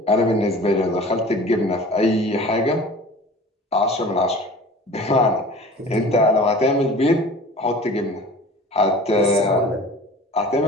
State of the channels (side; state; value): both; normal; correlation 0.42